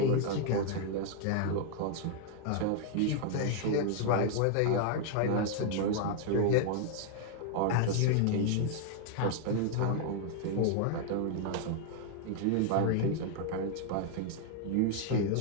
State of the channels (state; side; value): different; both; correlation 0.00